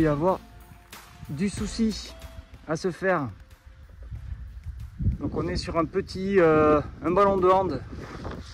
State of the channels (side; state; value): both; identical; correlation 1.00